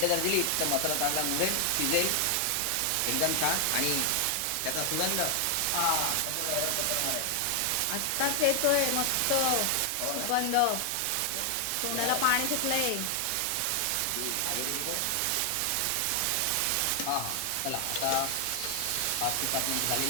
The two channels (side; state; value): both; different; correlation 0.00